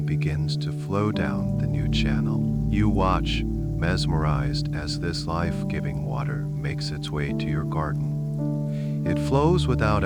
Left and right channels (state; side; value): identical; both; correlation 1.00